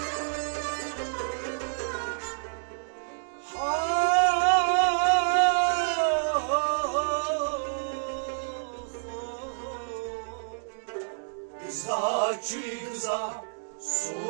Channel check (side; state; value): left; silent; digital silence